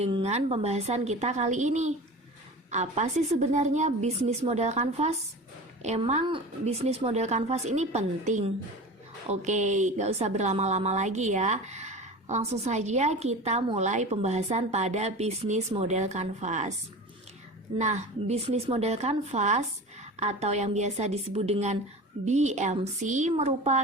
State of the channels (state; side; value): normal; both; correlation 0.33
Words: pembahasan kita kali ini? Apa sih sebenarnya bisnis model kanvas? Emang bisnis model kanvas ini penting? Oke, gak usah berlama-lama lagi ya. Langsung saja kita mulai pembahasan pada bisnis model kanvas. Nah, bisnis model kanvas atau yang biasa disebut dengan BMC